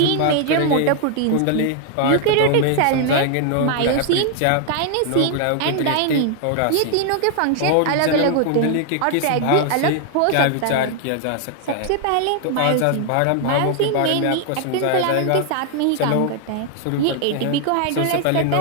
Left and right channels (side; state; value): both; different; correlation 0.00